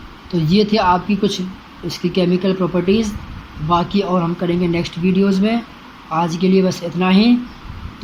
तो ये थे आपकी कुछ इसकी केमिकल प्रॉपर्टीज़ बाकी और हम करेंगे नेक्स्ट वीडियोस में। आज के लिए बस इतना ही।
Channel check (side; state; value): both; identical; correlation 1.00